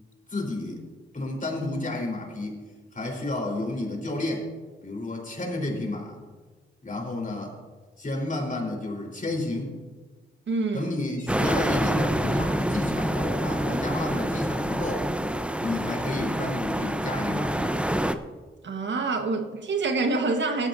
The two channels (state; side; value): normal; both; correlation 0.70